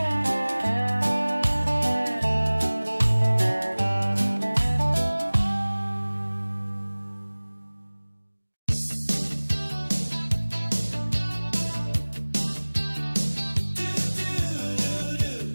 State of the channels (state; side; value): inverted; both; correlation -1.00